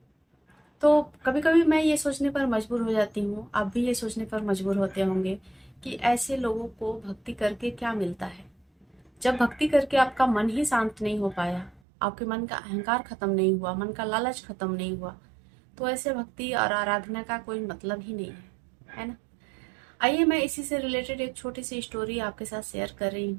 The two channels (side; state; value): left; drops out; at 11.8 s